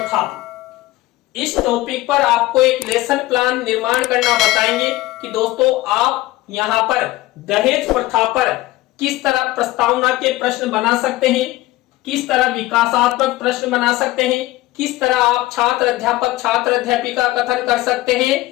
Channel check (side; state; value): right; quieter; 17.9 dB